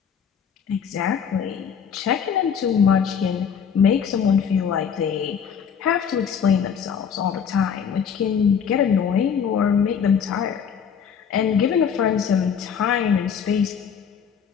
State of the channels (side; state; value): right; quieter; 7.4 dB